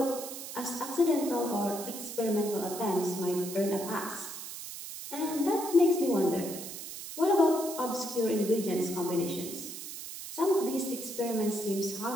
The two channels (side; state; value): right; noise; hiss, 9 dB below the sound